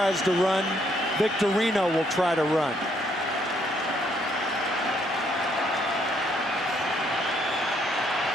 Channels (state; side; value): normal; both; correlation 0.70